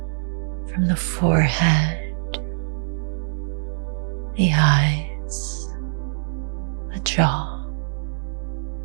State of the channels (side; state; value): left; silent; digital silence